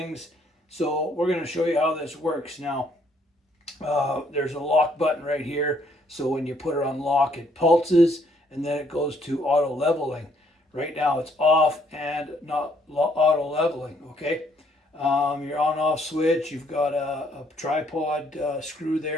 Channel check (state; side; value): normal; both; correlation 0.67